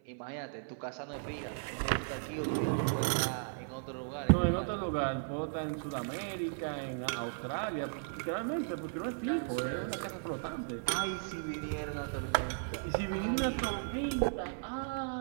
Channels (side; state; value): left; silent; 54 dB below the other